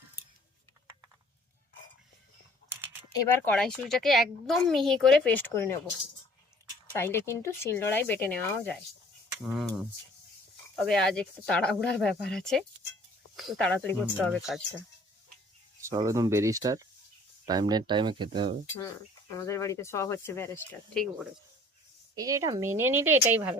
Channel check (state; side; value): normal; both; correlation 0.53